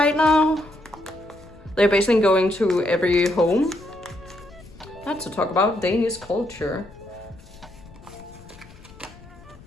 now. They're basically going to every home. Not to talk about Danish culture.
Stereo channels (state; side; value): noise; left; rumble, 21 dB below the sound